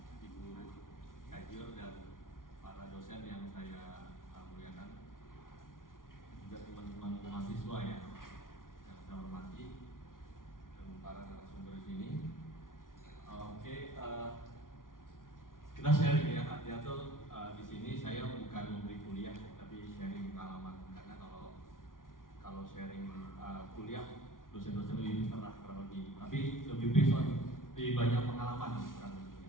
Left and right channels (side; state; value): right; late; 0.89 ms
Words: Ibu Kajur dan para dosen yang saya muliakan, juga teman-teman mahasiswa yang saya hormati, dan para narasumber di sini. Kita sharing ya, artinya tuh di sini saya bukan memberi kuliah, tapi sharing pengalaman. Karena kalau sharing kuliah, dosen-dosen lebih pernah kurang lebih, tapi lebih besok lebih banyak pengalaman kurang lebih.